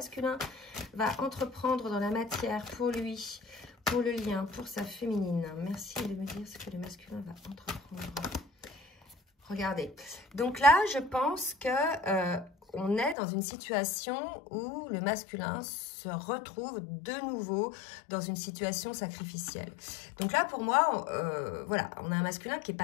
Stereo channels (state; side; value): drops out; right; at 13.2 s